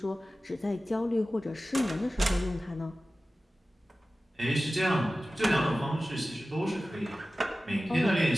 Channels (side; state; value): both; normal; correlation 0.96